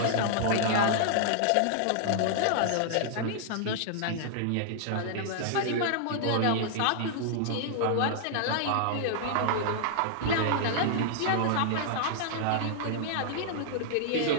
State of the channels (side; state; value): both; different; correlation -0.01